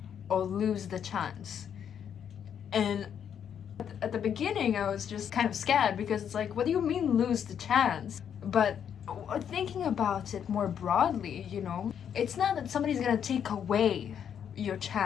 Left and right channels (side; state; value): right; quieter; 8.5 dB